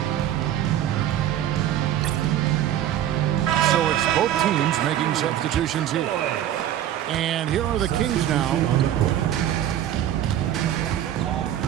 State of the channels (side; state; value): left; quieter; 11.5 dB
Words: So it's both teams making substitutions here. And here are the Kings now.